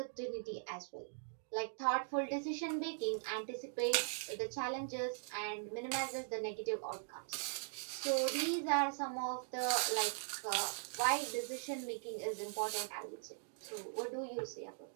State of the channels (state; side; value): silent; left; digital silence